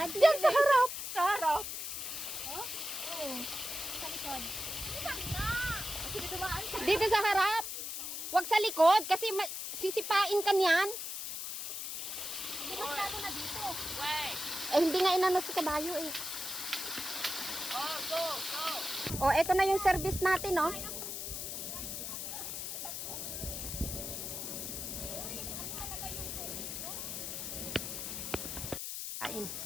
Diyan sa harap. Sa harap. Oh? Oo. Sa likod. Saan nga? Kasi dumaan ka. Dito sa harap. Huwag sa likod kasi sisipain ka niyan. Bukas na dito. Wait. Eh, hindi nga inano si kabayo, eh. Oh, go. Oh, eto na yung service natin, oh. Kain.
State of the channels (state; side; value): noise; left; hiss, 5 dB below the sound